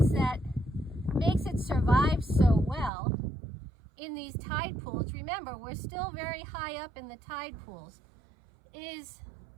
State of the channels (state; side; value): drops out; left; at 2.9 s